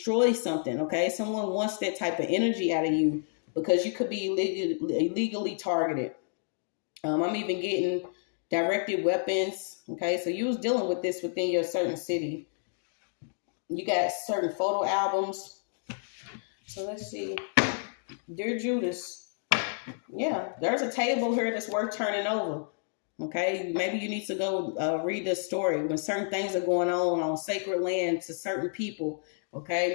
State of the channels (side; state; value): right; silent; digital silence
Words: something. Okay, someone wants that type of energy out of you because you could be illegally targeted. I'm even getting directed weapons. Okay, so you was dealing with this within your certain city. You got certain photo albums. So let's see. Dear Judas. Yeah, there's a table here that's worth turning over. Okay, maybe you need to go read this story when certain things are going on sacred land to certain people. Okay,